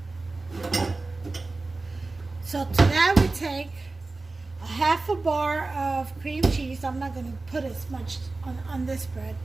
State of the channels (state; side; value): quieter; left; 3.4 dB